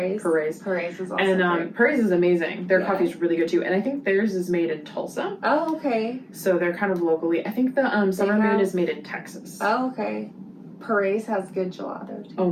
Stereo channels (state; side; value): identical; both; correlation 1.00